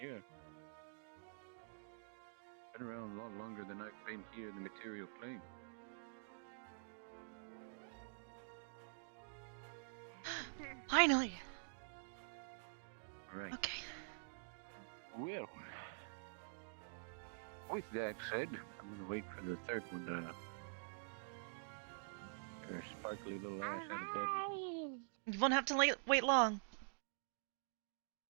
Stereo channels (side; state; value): left; silent; digital silence